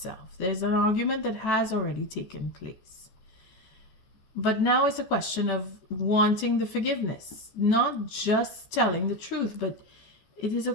There's an argument that has already taken place. But now it's a question of wanting the forgiveness, not just telling the truth, but it is a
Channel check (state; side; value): late; right; 14 ms